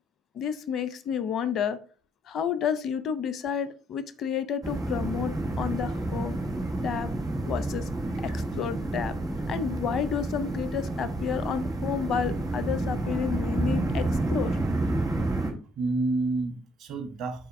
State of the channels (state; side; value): normal; both; correlation 0.68